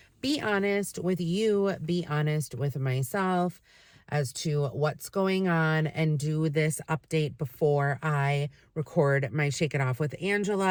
be honest with you, be honest with myself as to what's going on, and do this update before I record my Shake It Off with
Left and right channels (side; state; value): both; identical; correlation 1.00